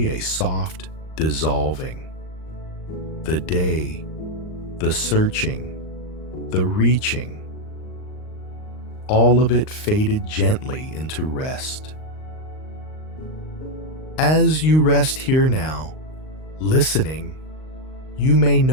a soft dissolving. The day, the searching, the reaching, all of it faded gently into rest. As you rest here now, listening, you may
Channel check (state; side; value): late; right; 38 ms